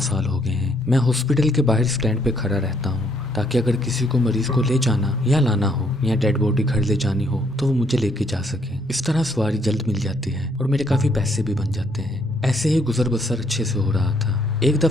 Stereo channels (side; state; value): both; normal; correlation 0.69